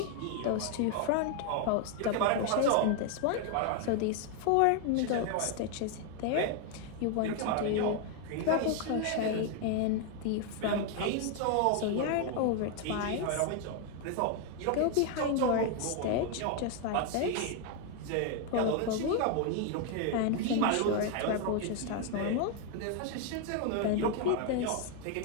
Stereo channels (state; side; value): different; both; correlation 0.01